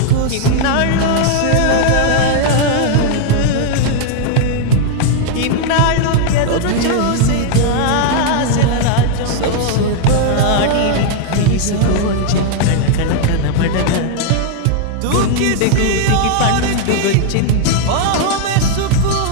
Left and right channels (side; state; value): both; different; correlation 0.00